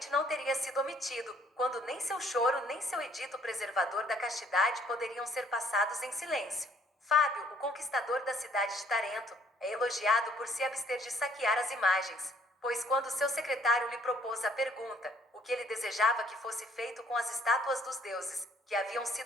não teria sido omitido, quando nem seu choro nem seu edito preservador da castidade poderiam ser passados em silêncio. Fábio, o conquistador da cidade de Tarento, é elogiado por se abster de saquear as imagens, pois quando seu secretário lhe propôs a pergunta, o que ele desejava que fosse feito com as estátuas dos deuses, que haviam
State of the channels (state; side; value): normal; both; correlation 0.62